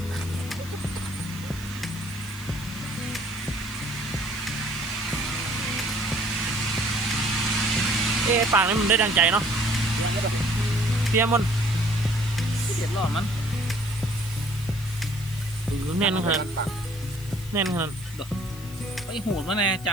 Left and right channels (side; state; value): left; noise; hiss, 18 dB below the sound